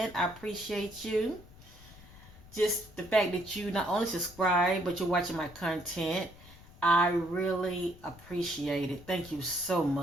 I appreciate you. Just the fact that you not only subscribe, but you're watching my content. I really appreciate it. Thank you so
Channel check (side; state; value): left; noise; rumble, 21 dB below the sound